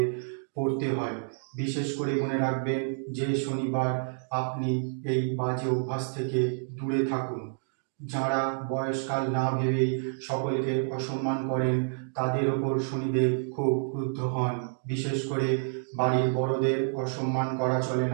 পড়তে হয়। বিশেষ করে মনে রাখবেন যে শনিবার আপনি এই বাজে অভ্যাস থেকে দূরে থাকুন। যাঁরা বয়সকাল না ভেবেই সকলকে অসম্মান করেন তাদের ওপর শনিদেব খুব ক্রুদ্ধ হন। বিশেষ করে বাড়ির বড়দের অসম্মান করা চলে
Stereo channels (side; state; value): left; silent; digital silence